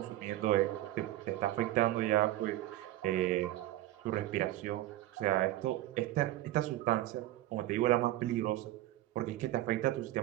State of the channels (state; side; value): quieter; left; 15.4 dB